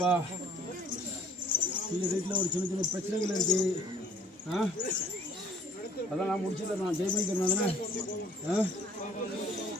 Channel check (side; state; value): both; normal; correlation 0.56